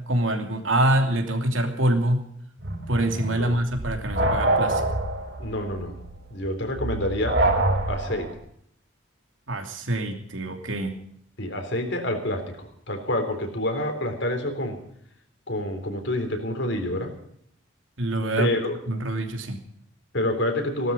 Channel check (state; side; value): normal; both; correlation 0.25